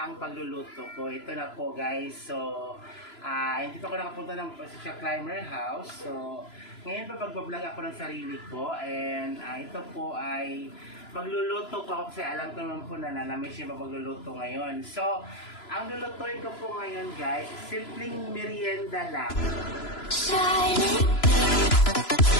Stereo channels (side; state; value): right; late; 3.0 ms